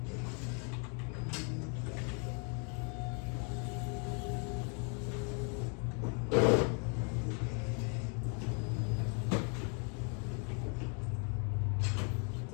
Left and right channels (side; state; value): right; quieter; 38.8 dB